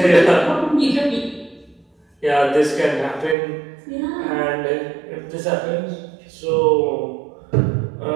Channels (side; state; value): left; drops out; at 3.4 s